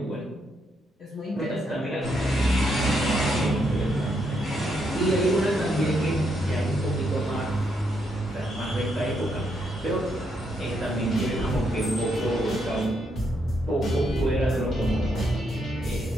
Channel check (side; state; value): both; normal; correlation 0.77